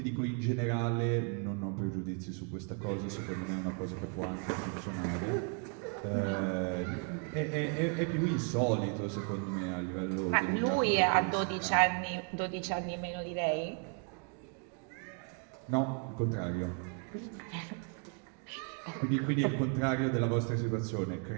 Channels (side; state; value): left; quieter; 40.0 dB